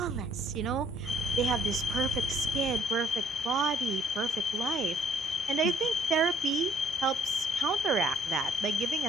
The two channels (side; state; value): both; normal; correlation 0.63